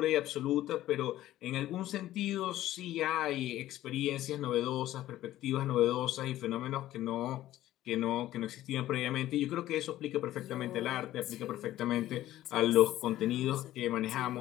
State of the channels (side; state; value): right; quieter; 14.2 dB